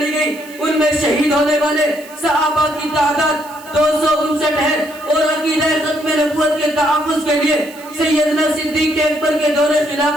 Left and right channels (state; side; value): noise; right; hiss, 21 dB below the sound